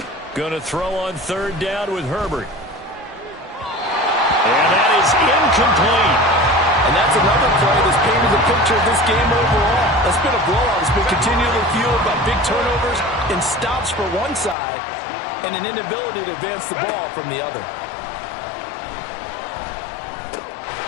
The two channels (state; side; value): drops out; right; at 14.6 s